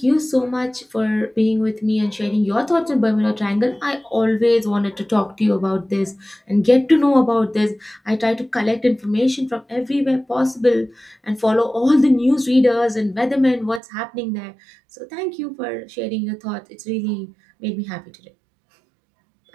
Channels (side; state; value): left; drops out; at 13.8 s